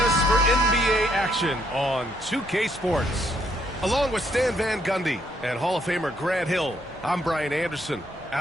for NBA action on 2K Sports. Along with Stan Van Gundy and Hall of Famer Grant Hill, I'm Brian Anderson.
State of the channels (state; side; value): normal; both; correlation 0.72